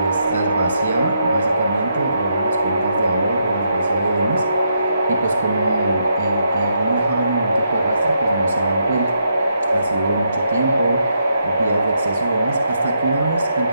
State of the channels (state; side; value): inverted; both; correlation -0.79